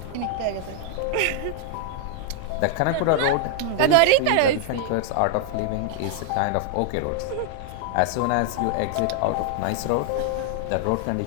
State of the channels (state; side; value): different; both; correlation 0.00